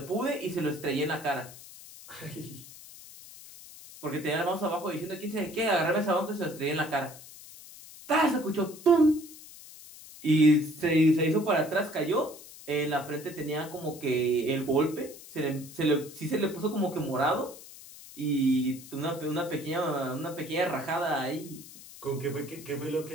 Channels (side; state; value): left; noise; hiss, 17 dB below the sound